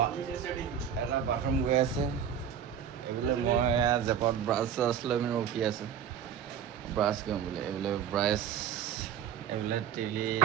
এটা বাথৰুম গৈ আছে এইবোলে মই জেপত ব্ৰাছ চাছ লৈ পিনে ৰখি আছোঁ ব্ৰাছ কৰিম বোলে এইবোলে ব্ৰাছ এইবোলে টিভি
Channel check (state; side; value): quieter; left; 8.4 dB